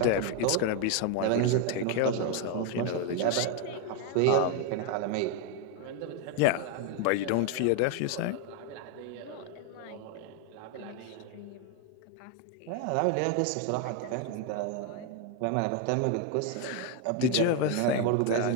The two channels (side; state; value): both; different; correlation 0.01